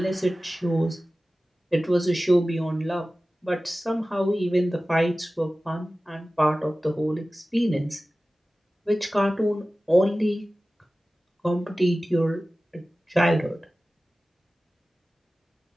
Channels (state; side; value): normal; both; correlation 0.96